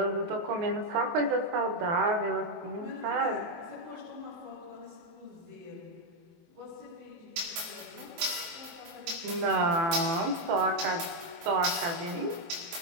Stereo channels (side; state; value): left; late; 23 ms